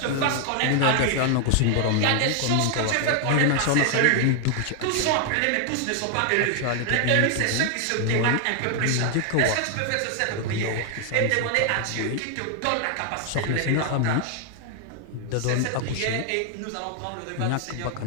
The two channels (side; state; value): both; different; correlation 0.00